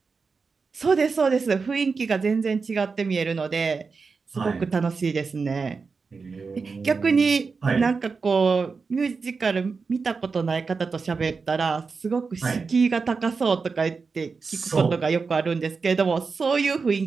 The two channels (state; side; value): quieter; left; 4.8 dB